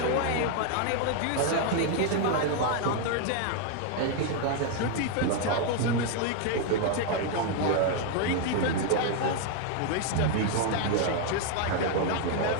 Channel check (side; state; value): both; different; correlation 0.00